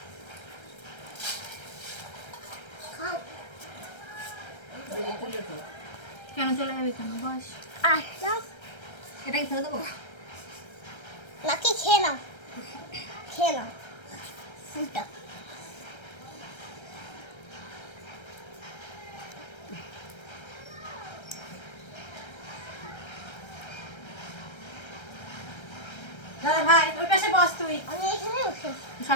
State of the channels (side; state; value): right; late; 1.3 ms